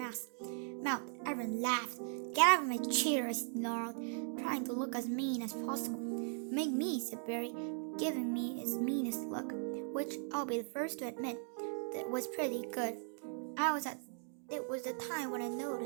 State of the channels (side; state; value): left; silent; 52 dB below the other